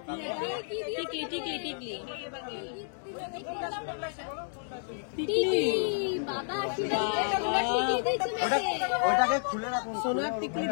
ওটাকে খুলে রাখুন। সোনার টিকলি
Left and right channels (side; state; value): right; silent; digital silence